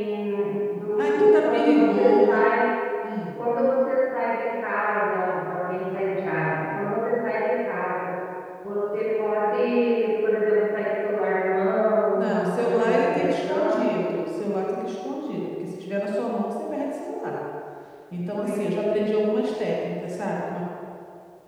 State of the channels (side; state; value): both; identical; correlation 1.00